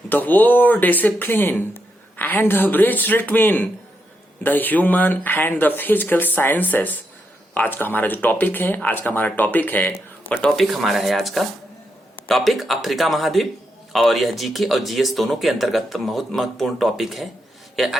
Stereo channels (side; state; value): both; normal; correlation 0.82